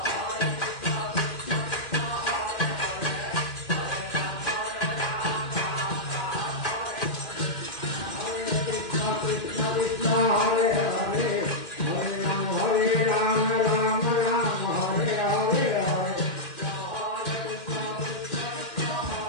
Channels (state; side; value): late; right; 2.6 ms